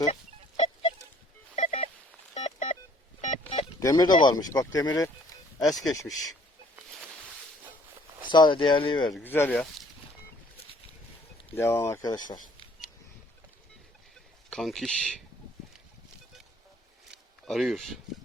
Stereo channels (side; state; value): both; normal; correlation 0.59